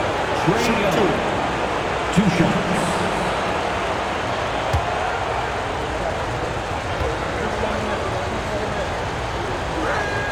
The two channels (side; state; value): both; identical; correlation 1.00